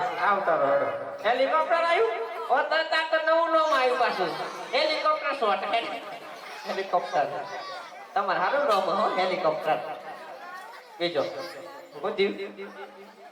આવતા રહો હેડો. હેલિકોપ્ટર આવ્યું ઓ તરત આ તો નવું નામ આવ્યું પાછું હેલિકોપ્ટર શોટ હેલિકોપ્ટર તમારે સારું નામ હો હેલિકોપ્ટર બીજો હું થયું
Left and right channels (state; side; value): identical; both; correlation 1.00